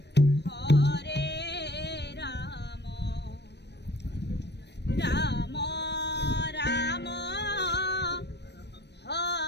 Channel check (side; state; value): right; late; 0.50 ms